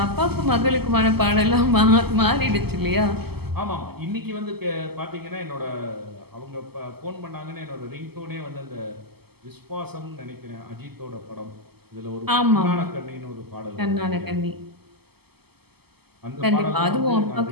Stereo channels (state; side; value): late; left; 0.96 ms